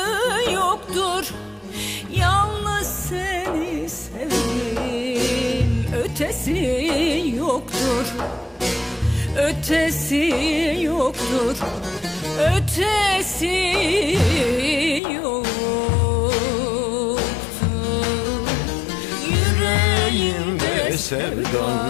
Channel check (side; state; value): right; drops out; at 15.0 s